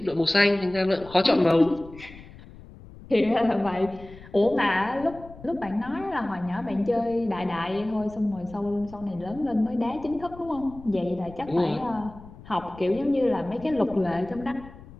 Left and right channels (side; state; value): left; noise; rumble, 18 dB below the sound